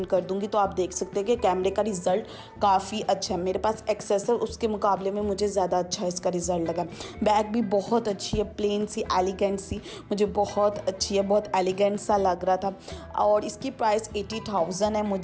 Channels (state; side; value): identical; both; correlation 1.00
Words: कर दूंगी, तो आप देख सकते हैं कि कैमरे का रिज़ल्ट काफ़ी अच्छा है। मेरे पास एक्सेस है, उसके मुकाबले में मुझे ज़्यादा अच्छा इसका रिज़ल्ट लगा। बैग भी बहुत अच्छी है, प्लेन सी एलिगेंट सी, मुझे बहुत अच्छी है, बहुत एलिगेंट सा लग रहा था। और इसकी प्राइस 80,000 है।